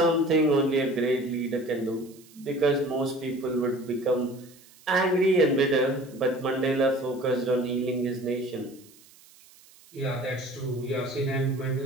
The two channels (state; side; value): noise; right; hiss, 25 dB below the sound